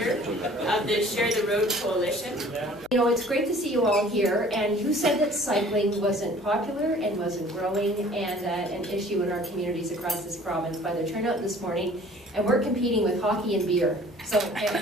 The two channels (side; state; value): left; noise; hum, 27 dB below the sound